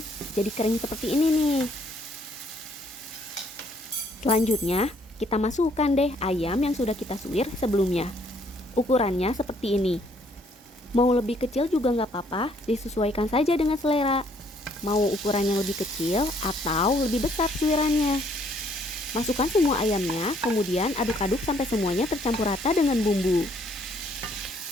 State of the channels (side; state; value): both; normal; correlation 0.65